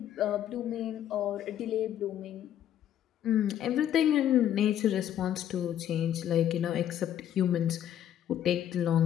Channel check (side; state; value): right; quieter; 10.7 dB